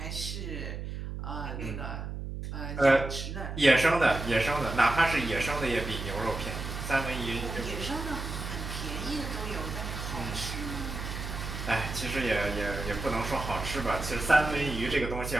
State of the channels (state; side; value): noise; right; hum, 6 dB below the sound